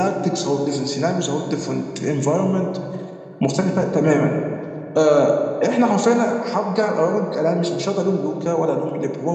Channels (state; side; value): identical; both; correlation 1.00